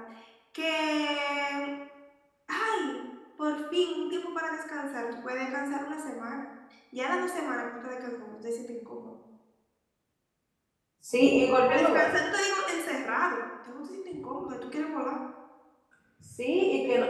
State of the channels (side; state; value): both; identical; correlation 1.00